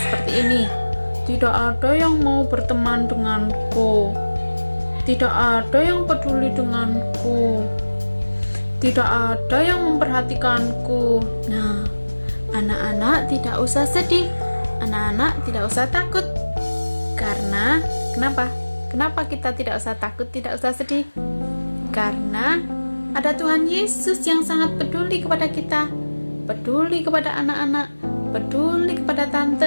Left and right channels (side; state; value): both; inverted; correlation -1.00